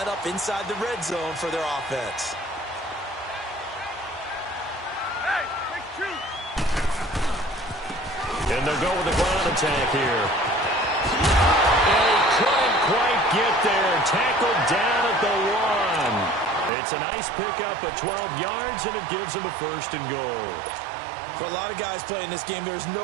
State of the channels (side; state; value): left; drops out; at 16.7 s